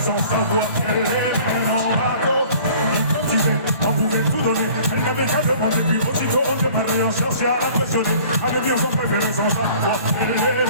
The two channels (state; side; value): inverted; both; correlation -0.50